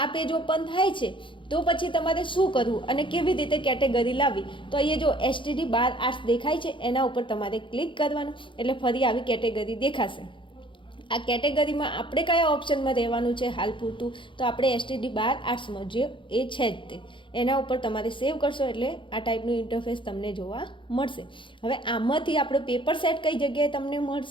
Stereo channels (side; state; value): right; late; 0.24 ms